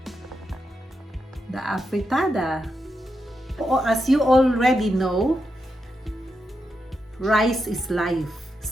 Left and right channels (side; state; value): both; normal; correlation 0.86